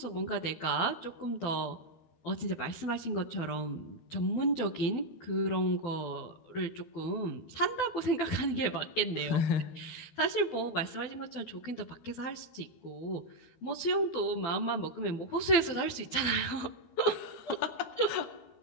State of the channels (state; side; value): late; right; 12 ms